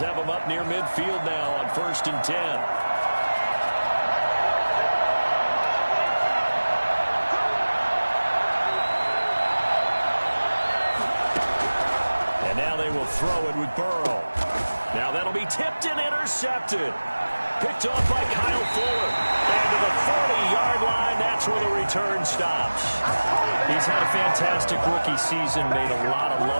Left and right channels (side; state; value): both; inverted; correlation -1.00